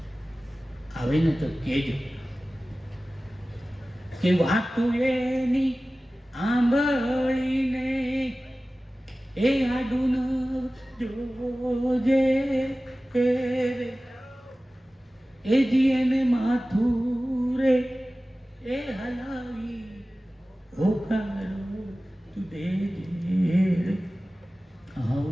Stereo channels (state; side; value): normal; both; correlation 0.97